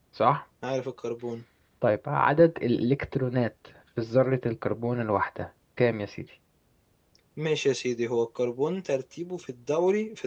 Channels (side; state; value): both; identical; correlation 1.00